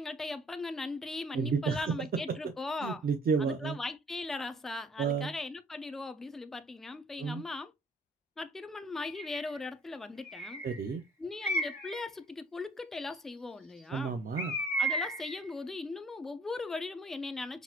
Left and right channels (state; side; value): normal; both; correlation 0.58